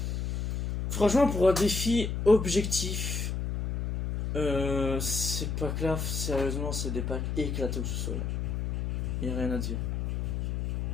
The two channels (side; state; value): left; noise; hum, 2 dB below the sound